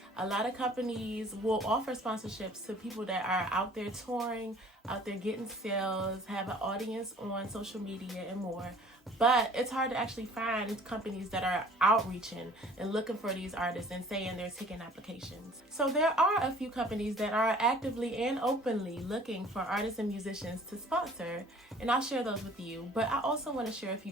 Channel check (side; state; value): both; normal; correlation 0.51